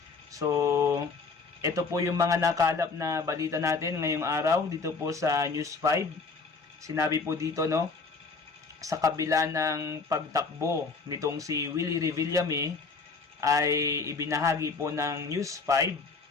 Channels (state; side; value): quieter; right; 4.4 dB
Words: So, ito po yung mga nakalap na balita natin ngayong araw dito po sa News 5. Sinabi po dito sa kabila ng pagtakbo nitong si Willie Revillame ay ibinahagi po ng News 5.